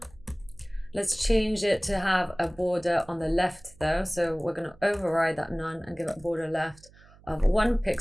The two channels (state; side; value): noise; right; hum, 25 dB below the sound